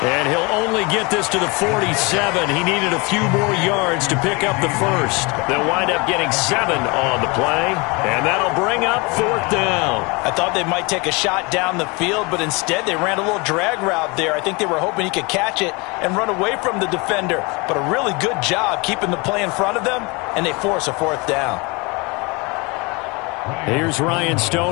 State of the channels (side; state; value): right; quieter; 27.8 dB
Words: And he'll only get this to the 47. He needed a few more yards to pick up the 1st. They'll wind up getting 7 on the play, and that'll bring up 4th down. I thought they might take a shot down the field, but instead they ran a little drag route there. I think they were hoping he could catch it and run away from the defender. But a really good job keeping the play in front of them, and they force a 4th down. Here's Ryan